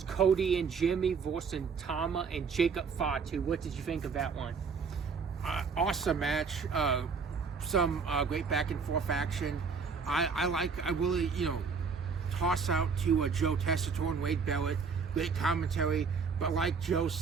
Cody and Jimmy versus Tama and Jacob Fatu. What did you think of that one? Awesome match. Some great back and forth action. I really, toss out to Joe Tessitore and Wade Barrett. Great commentary. But like Joe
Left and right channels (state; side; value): quieter; left; 5.4 dB